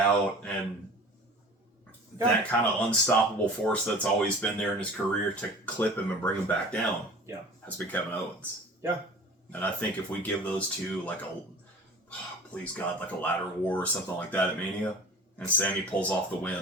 and that kind of unstoppable force that's always been there in his career to clip him and bring him back down has been Kevin Owens. Yeah. And I think if we give those two like please God, like a ladder war or something like that at Mania, and Sami pulls off the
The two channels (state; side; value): normal; both; correlation 0.41